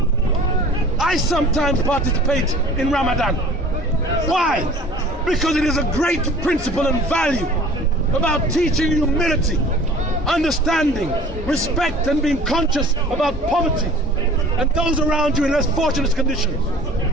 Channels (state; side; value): normal; both; correlation 0.46